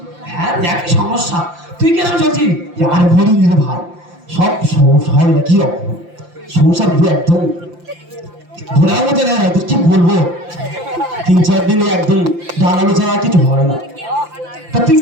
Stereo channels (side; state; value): left; late; 5.8 ms